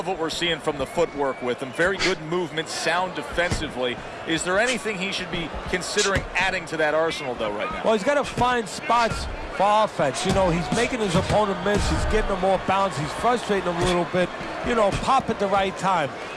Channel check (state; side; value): identical; both; correlation 1.00